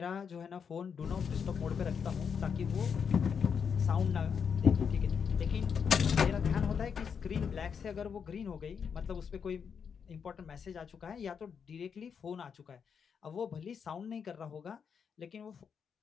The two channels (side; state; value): right; quieter; 6.7 dB